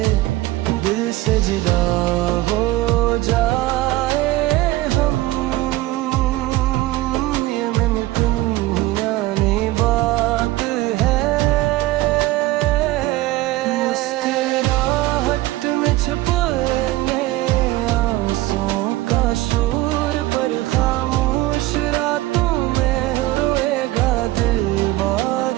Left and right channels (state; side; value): quieter; left; 17.6 dB